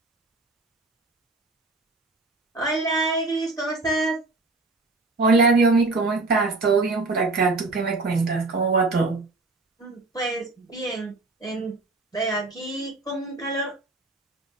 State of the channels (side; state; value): left; quieter; 3.3 dB